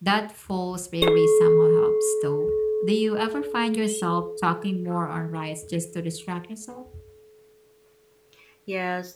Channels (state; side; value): identical; both; correlation 1.00